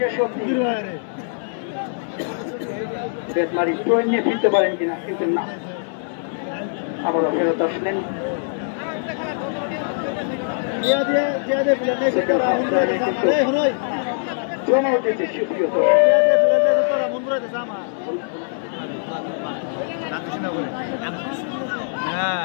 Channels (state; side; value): silent; right; digital silence